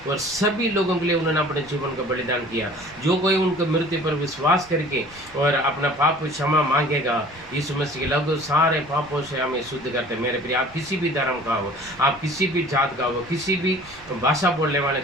और सभी लोगों के लिए उन्होंने अपने जीवन का बलिदान किया। जो कोई उनके मृत्यु पर विश्वास करके और अपना पाप क्षमा मांगेगा, यीशु मसीह के लहू सारे पापों से हमें शुद्ध करते हैं। मेरे प्रिय, आप किसी भी धर्म का हो, आप किसी भी जात का हो, किसी भी भाषा बोलने वाले,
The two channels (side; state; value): right; noise; rumble, 23 dB below the sound